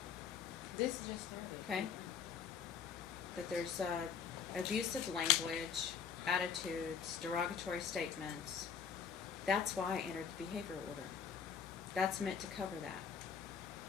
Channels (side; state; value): right; quieter; 7.0 dB